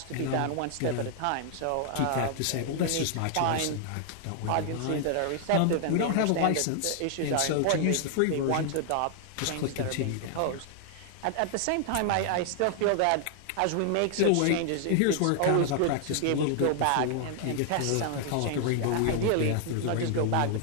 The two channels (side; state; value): both; different; correlation 0.00